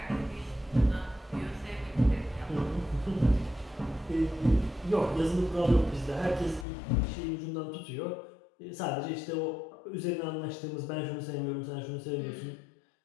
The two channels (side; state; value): right; drops out; at 6.7 s